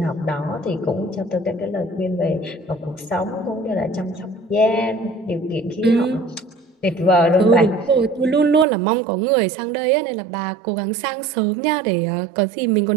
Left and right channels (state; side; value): drops out; left; at 8.7 s